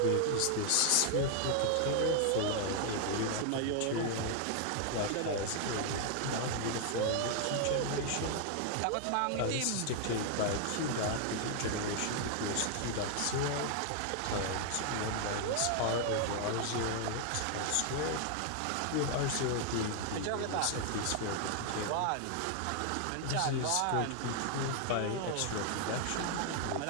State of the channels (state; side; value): different; both; correlation 0.00